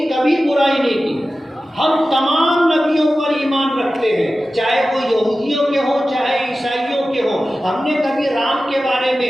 कभी बुराई नहीं की। हम तमाम नबियों पर ईमान रखते हैं, चाहे वो यहूदियों के हों चाहे ईसाइयों के हों। हमने कभी राम के बारे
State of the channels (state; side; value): normal; both; correlation 0.94